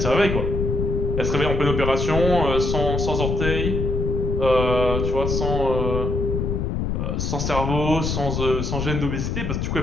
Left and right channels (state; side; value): noise; left; rumble, 1 dB below the sound